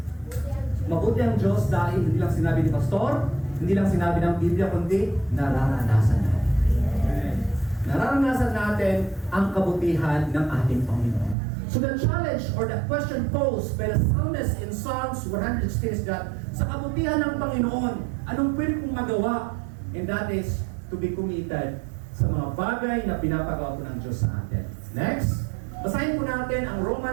Mabuti ang Diyos dahil hindi lang sinabi ni Pastor, hindi lang sinabi ng Biblia, kundi nararanasan natin. Nararanasan natin ang kabutihan ng ating Panginoon. So the challenge or the question posed by the psalmist in Psalms 116 is that sa kabutihan ng Panginoon, anong pwede kong magawa? And that is to be committed sa mga bagay na pinapagawa po ng Diyos sa atin. Next, basahin po natin ang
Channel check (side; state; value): left; drops out; at 11.4 s